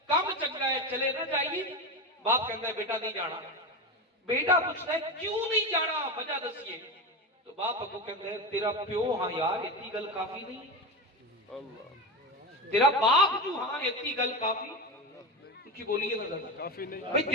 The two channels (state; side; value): normal; both; correlation 0.20